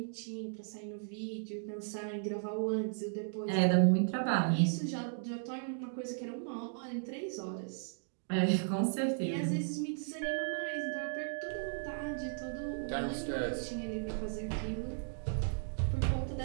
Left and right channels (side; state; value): left; silent; digital silence